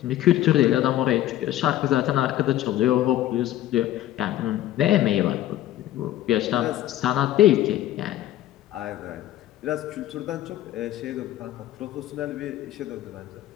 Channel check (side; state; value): right; quieter; 13.5 dB